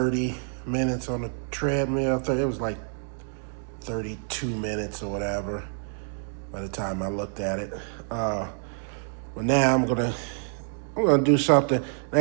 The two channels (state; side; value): silent; left; 57 dB below the other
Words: minutes on the treadmill. It was like 32 minutes or whatever by the time I looked at it. But now I'm gonna do something. Now,